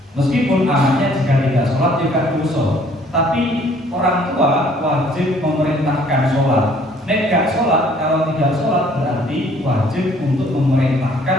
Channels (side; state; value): both; normal; correlation 0.59